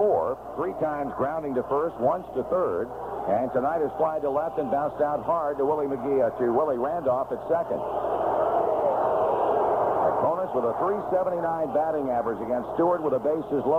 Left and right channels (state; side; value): identical; both; correlation 1.00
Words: 3 times grounding to first, once to third. And tonight is fly to left and bounced out hard to Willie Randolph at second. Opponents with a .379 batting average against Stewart with the bases